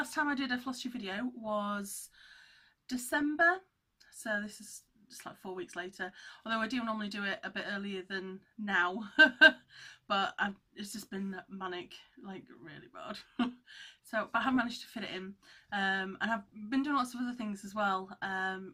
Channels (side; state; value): both; identical; correlation 1.00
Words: time I did a Flosstube video was December, so this is just like 4 weeks later, although I do normally do it a bit earlier than now. But it's just been manic, like really bad. But I have managed to fit it in, and I've been doing lots of other things as well. I'm